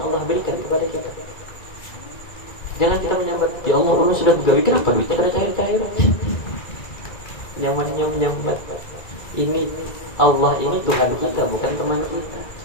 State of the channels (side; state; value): right; late; 1.9 ms